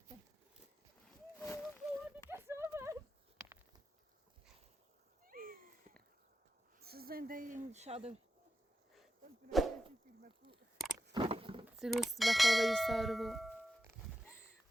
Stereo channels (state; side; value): normal; both; correlation 0.90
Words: زنده این شادو سروس به خوابه سارو